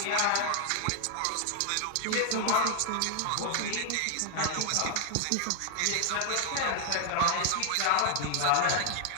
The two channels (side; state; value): both; different; correlation 0.00